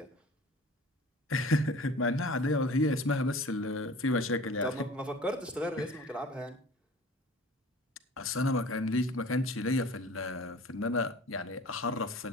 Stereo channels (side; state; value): both; normal; correlation 0.43